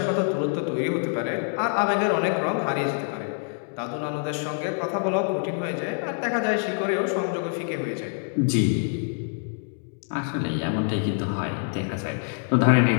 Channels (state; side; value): silent; right; 61 dB below the other